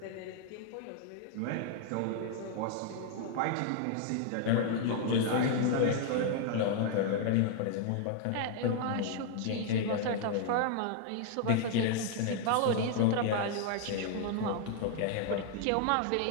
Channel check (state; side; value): different; both; correlation 0.00